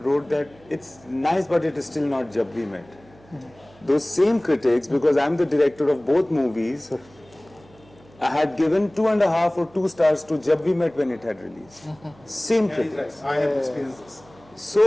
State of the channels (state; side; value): noise; right; hum, 27 dB below the sound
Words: that it's nice, but it is still not Jab We Met. Those same critics, because I'm the director of both movies, I had given 2.5 or 2 stars to Jab We Met when it had released. Same critics. I have experienced this.